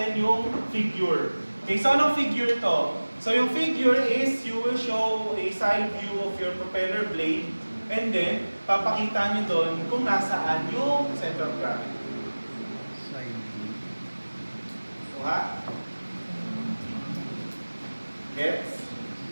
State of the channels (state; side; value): inverted; both; correlation -1.00